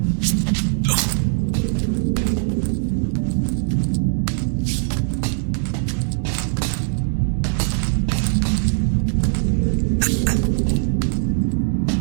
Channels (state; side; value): silent; left; digital silence